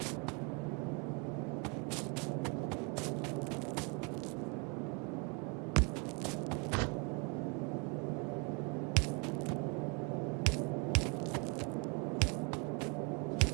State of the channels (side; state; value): left; quieter; 30.9 dB